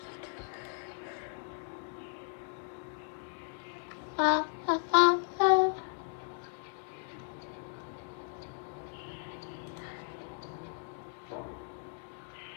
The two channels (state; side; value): silent; right; 54 dB below the other